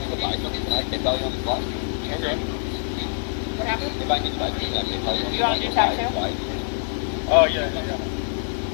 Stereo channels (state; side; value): silent; right; digital silence